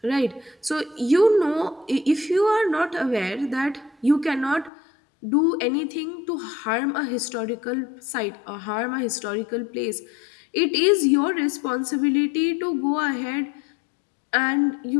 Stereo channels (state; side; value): drops out; right; at 4.7 s